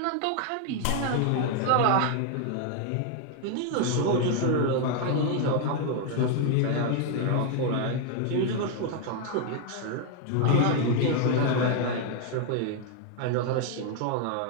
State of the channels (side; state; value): both; different; correlation 0.00